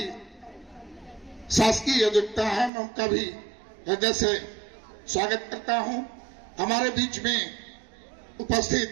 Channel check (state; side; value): drops out; left; at 2.7 s